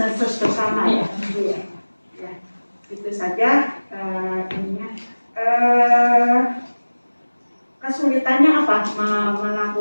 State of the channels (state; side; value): inverted; both; correlation -1.00